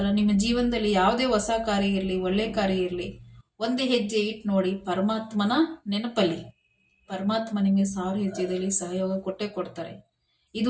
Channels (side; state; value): both; identical; correlation 1.00